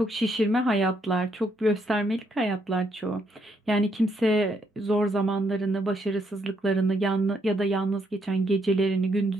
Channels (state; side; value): normal; both; correlation 0.74